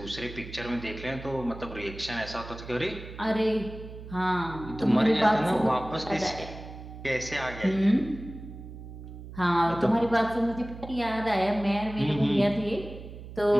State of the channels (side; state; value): right; noise; hum, 13 dB below the sound